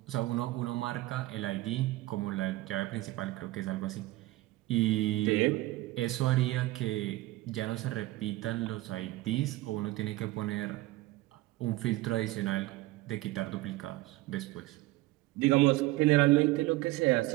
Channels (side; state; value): left; quieter; 18.5 dB